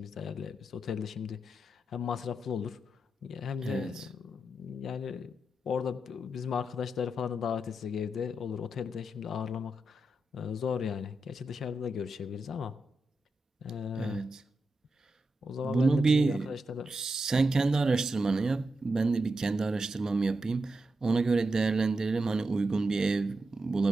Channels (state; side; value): normal; both; correlation 0.87